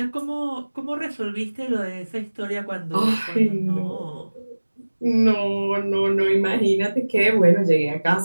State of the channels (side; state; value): both; inverted; correlation -1.00